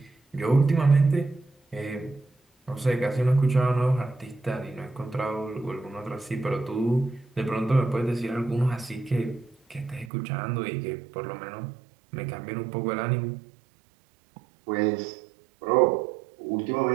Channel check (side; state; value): left; drops out; at 10.1 s